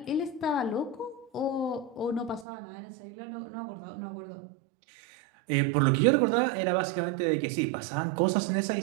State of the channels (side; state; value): left; drops out; at 2.5 s